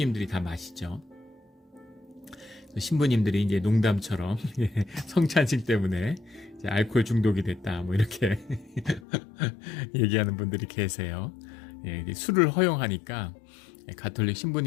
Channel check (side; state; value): right; drops out; at 9.1 s